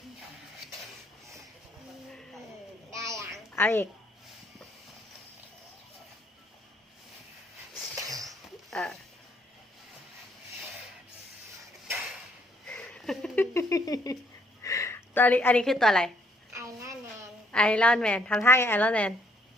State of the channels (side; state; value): both; normal; correlation 0.68